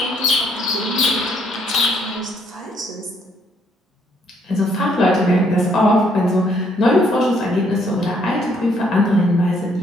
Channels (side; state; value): both; normal; correlation 0.69